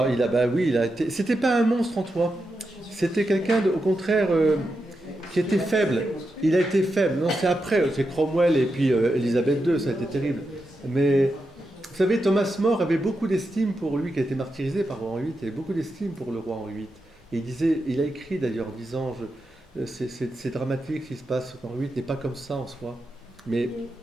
il a été. C'était pas un monstre en toi. C'était quelqu'un, au contraire, qui était faible. Il a été faible. Non, c'est après. C'est Cromwell et puis Élisabeth II, ça a été terrible. Mais vous savez, Thomas More avait beaucoup d'estime pour lui, qui a été martyrisé par Henri VIII. Il avait beaucoup d'estime pour le roi Henri VIII. Et il a écrit d'ailleurs, en disant c'est dramatique ce qui se passe. Henri VIII n'est pas comme ça en soi. Mais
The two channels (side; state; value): both; normal; correlation 0.87